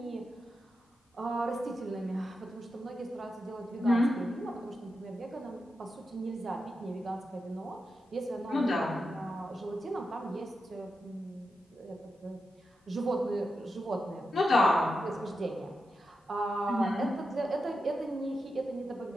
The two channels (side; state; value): both; normal; correlation 0.88